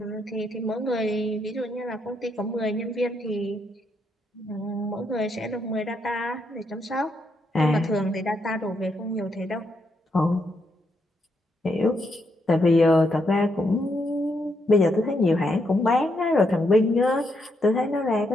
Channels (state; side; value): normal; both; correlation 0.78